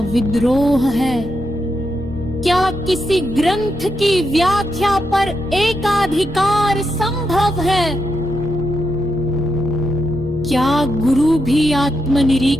विद्रोह है? क्या किसी ग्रंथ की व्याख्या पर एकाधिकार संभव है? क्या गुरु भी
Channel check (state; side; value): noise; right; hum, 15 dB below the sound